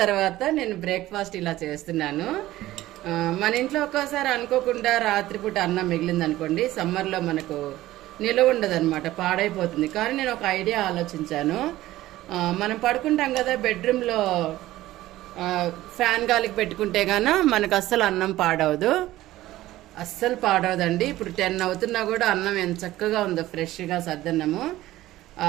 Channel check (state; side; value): quieter; left; 15.8 dB